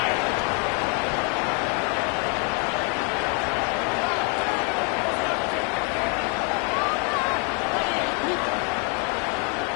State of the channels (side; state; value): right; quieter; 37.3 dB